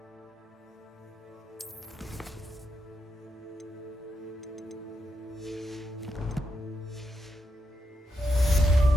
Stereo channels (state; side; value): normal; both; correlation 0.84